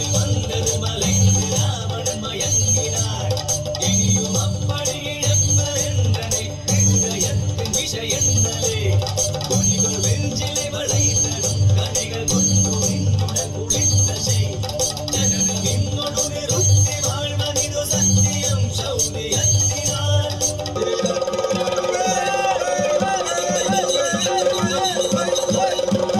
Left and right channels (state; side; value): identical; both; correlation 1.00